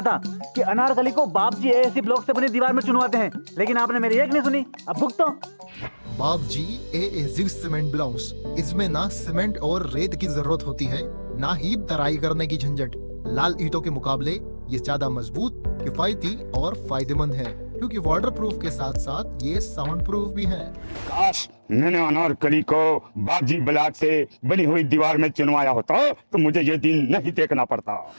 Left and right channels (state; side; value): inverted; both; correlation -1.00